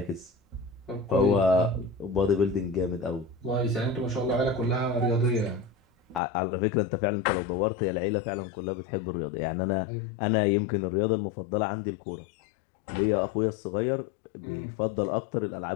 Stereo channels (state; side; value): drops out; right; at 6.2 s